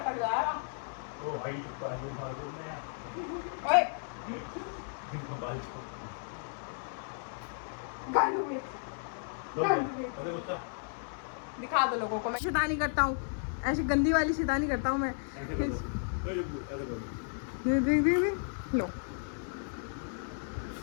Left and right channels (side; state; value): right; silent; 55 dB below the other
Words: जाएगा। ओ भाई बाजू बाजू में यार। ओए बाजू गालू में अरे गुस्सा दिखा दो लोगों को। मैं शैतानी करता हूँ, ऐसी गंदी वाली शैतानी करता हूँ मैं। ऐसे कर दो। ऐसे कर दे लो।